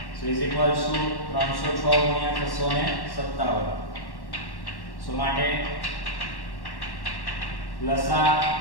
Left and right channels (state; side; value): late; right; 1.1 ms